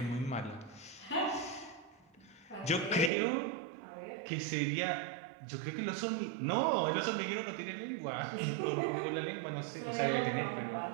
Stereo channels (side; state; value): left; drops out; at 3.1 s